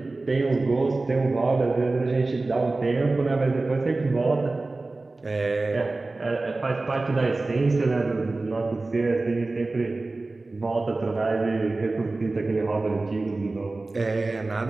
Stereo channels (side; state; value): left; quieter; 3.3 dB